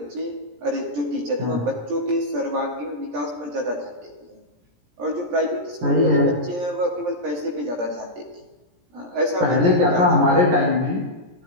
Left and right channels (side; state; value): left; late; 17 ms